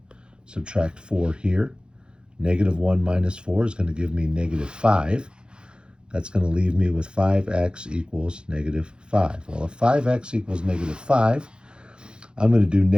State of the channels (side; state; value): left; late; 0.050 ms